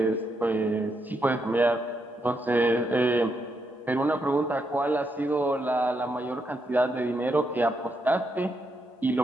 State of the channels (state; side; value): normal; both; correlation 0.80